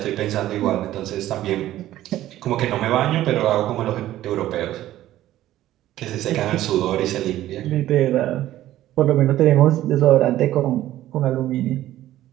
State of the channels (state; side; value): quieter; left; 14.0 dB